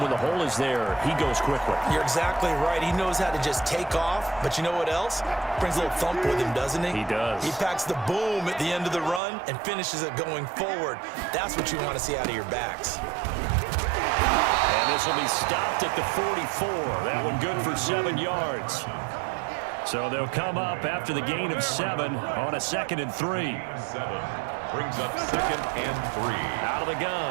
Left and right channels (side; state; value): left; drops out; at 9.2 s